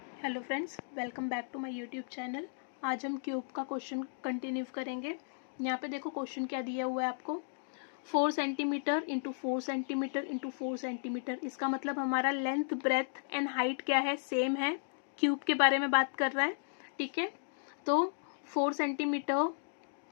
Hello friends, welcome back to my YouTube channel. आज हम cube का क्वेश्चन कंटिन्यू करेंगे। यहाँ पे देखो क्वेश्चन क्या दिया हुआ है आपको, 4 centimetre into 4 centimetre into 4 centimetre. इसका मतलब हमारा लेंथ, ब्रेथ एंड हाइट क्या है, सेम है। क्यूब के बारे में बात कर रहा है, ठीक है। तो 4 सेंटीमीटर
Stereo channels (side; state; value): right; silent; digital silence